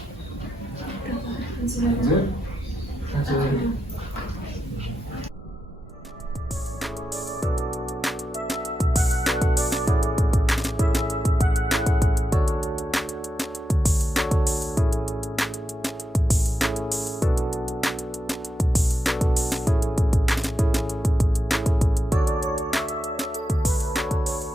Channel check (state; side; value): normal; both; correlation 0.87